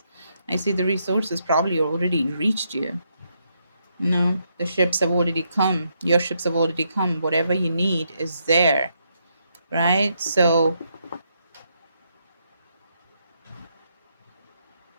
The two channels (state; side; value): inverted; both; correlation -0.78